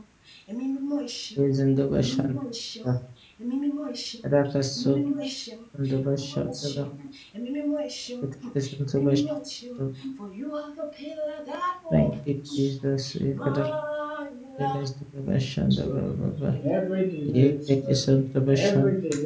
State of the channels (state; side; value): identical; both; correlation 1.00